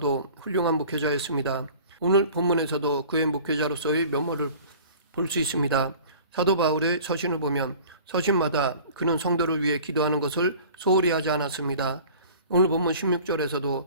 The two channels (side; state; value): both; inverted; correlation -0.45